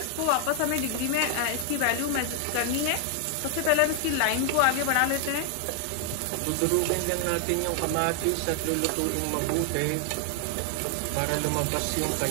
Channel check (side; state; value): both; different; correlation 0.00